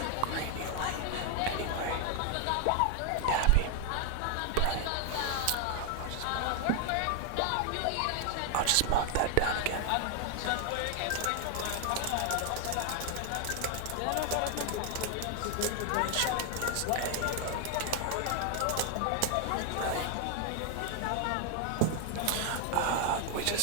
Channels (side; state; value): both; different; correlation 0.00